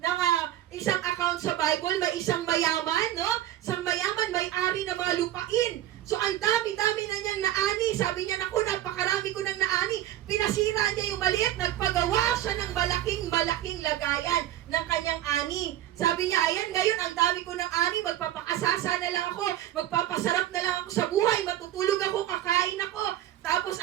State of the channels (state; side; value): quieter; left; 13.1 dB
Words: isang account sa Bible? May isang mayaman, no? Isang mayaman, may-ari ng mga lupain. So, ang dami-dami na niyang naani. Sabi niya, naku, napakarami ko ng naani. Pinasira niya yung maliit. Nagpagawa siya ng malaking lagayan ng kanyang ani. Sabi niya, ayan, ngayon, ang dami ko ng ani. Magpapakasasa na lang ako. Magpapasarap na lang ako sa buhay. Matutulog ako, kakain ako. Tapos,